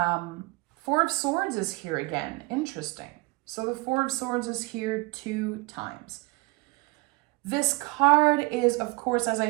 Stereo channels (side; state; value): left; quieter; 24.9 dB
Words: of Swords is here again. Interesting. So the Four of Swords is here 2 times. This card is, of course, as I